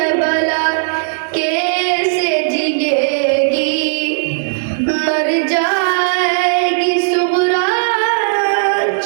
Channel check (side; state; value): left; silent; digital silence